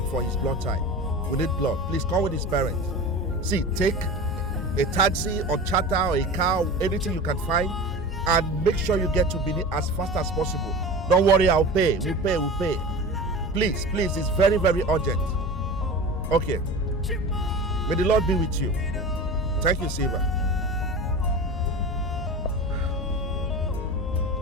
for his blood type. We need blood. Please come with his parents. See, take a taxi or charter or a car, anything you can find, and make sure you get to Benin as fast as possible. Don't worry, I'll pay. We'll pay. Please, it's very, very urgent. Okay. May the Lord be with you. Thank you, Silva.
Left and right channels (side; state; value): both; normal; correlation 0.32